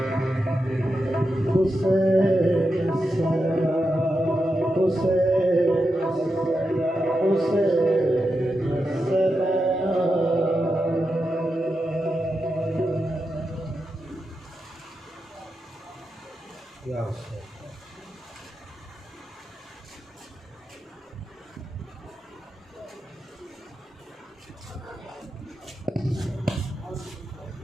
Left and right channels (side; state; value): both; normal; correlation 0.88